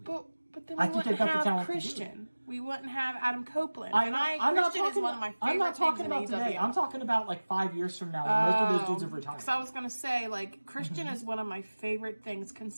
But then we wouldn't have Christian. We wouldn't have Adam Copeland. Christian is one of my favorite I'm not talking about things today. I'm talking about 5 years from now when most of those dudes have retired. Because I was going to say, Christian is one of my favorite things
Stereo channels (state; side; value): inverted; both; correlation -1.00